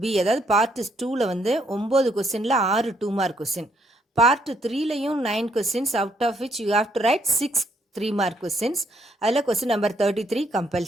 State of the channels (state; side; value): normal; both; correlation 0.71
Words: B அதாவது பார்ட் 2ல வந்து 9 கொஸ்டினில் 6 2 மார்க் கொஸ்டின். பார்ட் 3லையும் 9 questions, out of which you have to write 6 3 mark questions. அதில் கொஸ்டின் நம்பர் 33